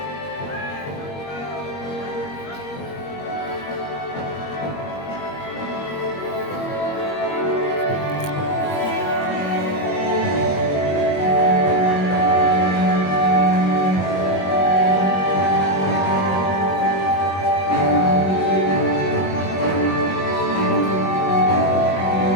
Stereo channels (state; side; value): late; right; 21 ms